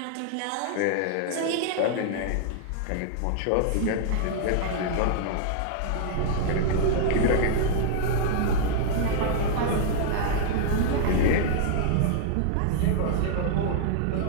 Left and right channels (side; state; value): both; different; correlation -0.01